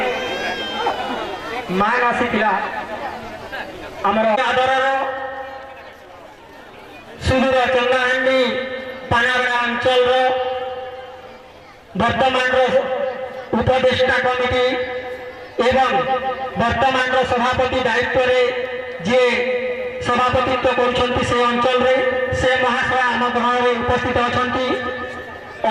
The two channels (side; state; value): both; identical; correlation 1.00